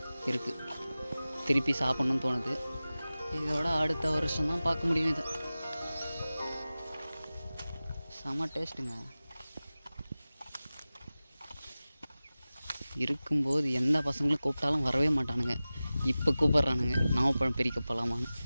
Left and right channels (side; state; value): both; inverted; correlation -0.97